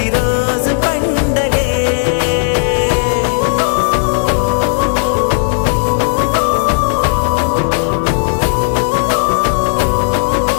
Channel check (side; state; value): right; silent; digital silence